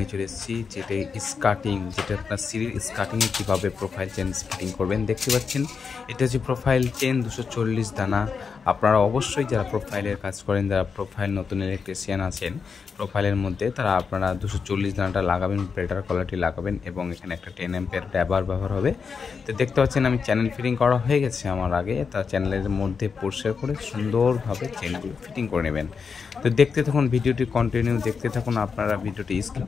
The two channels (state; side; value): quieter; right; 5.6 dB